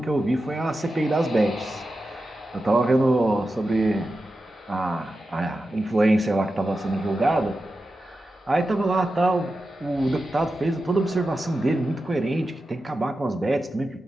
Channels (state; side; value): normal; both; correlation 0.91